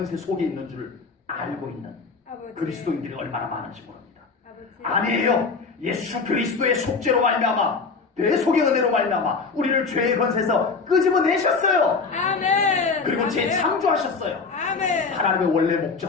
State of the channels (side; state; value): right; quieter; 4.7 dB